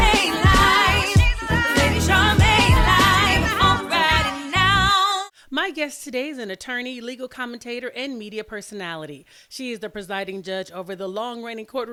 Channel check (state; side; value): identical; both; correlation 1.00